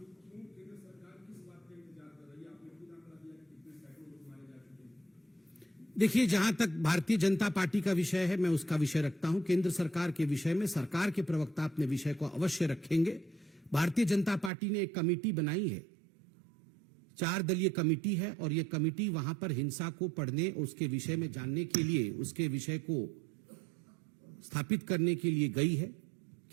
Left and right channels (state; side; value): drops out; left; at 14.5 s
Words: क्यों केंद्र सरकार किस बात का इंतजार कर रही है? आपने खुद आंकड़ा दिया कि कितने सैकड़ों लोग मारे जा चुके हैं। देखिए, जहां तक भारतीय जनता पार्टी का विषय है, मैं उसका विषय रखता हूं। केंद्र सरकार के विषय में सरकार के प्रवक्ता अपने विषय को अवश्य रखेंगे। भारतीय जनता पार्टी ने एक कमेटी बनाई है, 4 दलीय कमेटी है, और यह कमेटी वहां पर हिंसा को पढ़ने, उसके विषय में जानने के लिए, उसके विषय को स्थापित करने के लिए गई है।